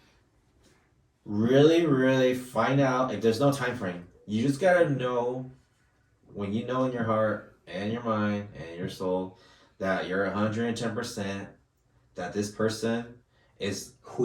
really find out if there's no time frame. You just gotta know when you know in your heart and your mind and your soul that you're 110% that this person is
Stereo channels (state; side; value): identical; both; correlation 1.00